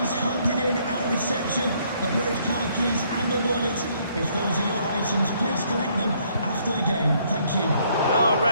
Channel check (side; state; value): both; inverted; correlation -0.67